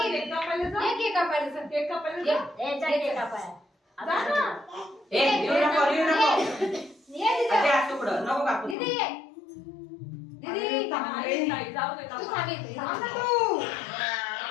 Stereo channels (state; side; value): drops out; right; at 8.8 s